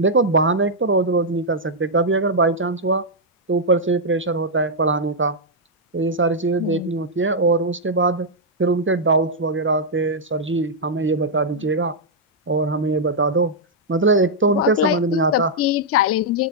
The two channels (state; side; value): normal; both; correlation -0.06